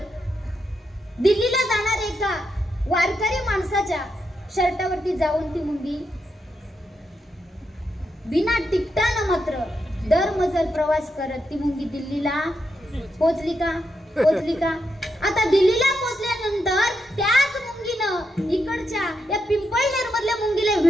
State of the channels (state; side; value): normal; both; correlation 0.83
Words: दिल्लीला जाणार एका वारकरी माणसाच्या शर्टावरती जाऊन ती मुंगी बिना तिकटानं मात्र दरमजल प्रवास करत ती मुंगी दिल्लीला पोहोचली का. आता दिल्लीला पोहोचल्यानंतर त्याच मुंगीनं इकडच्या या पिंपळनेर मधल्या मुंगीला